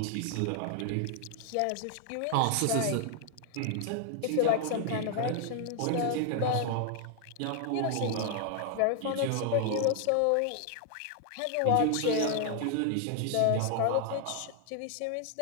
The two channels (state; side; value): different; both; correlation 0.00